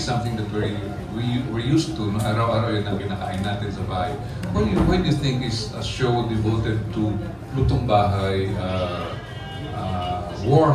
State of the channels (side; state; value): both; identical; correlation 1.00